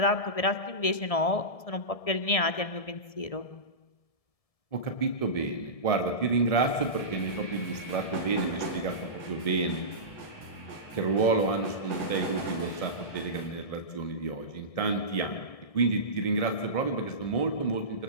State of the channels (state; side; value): late; right; 1.7 ms